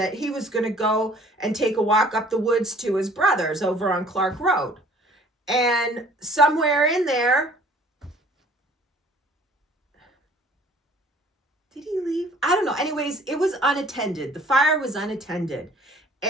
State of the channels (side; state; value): both; normal; correlation 0.54